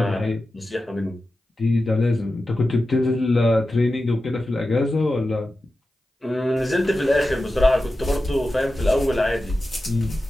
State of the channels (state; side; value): normal; both; correlation 0.93